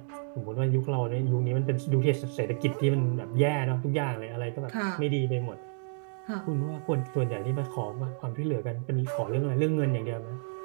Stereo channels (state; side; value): silent; left; digital silence